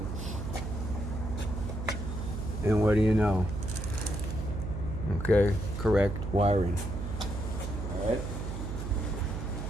And what do you know? Okay, correct wiring. All right.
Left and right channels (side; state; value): right; noise; hum, 5 dB below the sound